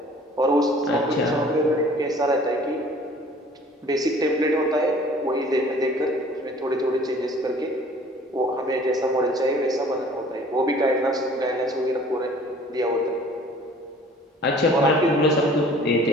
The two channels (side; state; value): both; normal; correlation 0.51